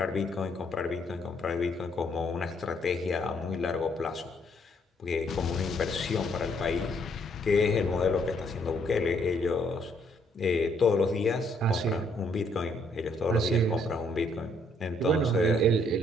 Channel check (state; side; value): normal; both; correlation 0.69